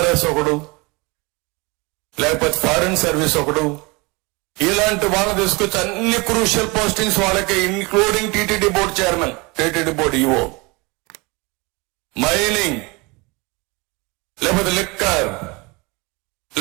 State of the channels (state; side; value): quieter; left; 26.3 dB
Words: ఒకడు, లేకపోతే ఫారిన్ సర్వీస్ ఒకడు, ఇలాంటి వాళ్ళని తీసుకొచ్చి అన్ని క్రూషియల్ పోస్టింగ్స్ వాళ్ళకి, including TTD board chairman, TTD board EO, mining, లేకపోతే లిక్కర్,